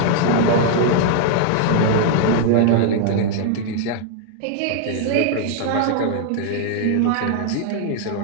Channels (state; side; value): different; both; correlation 0.00